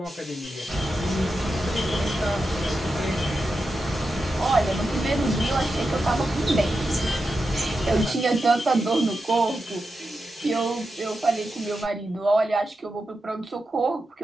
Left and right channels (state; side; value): normal; both; correlation 0.89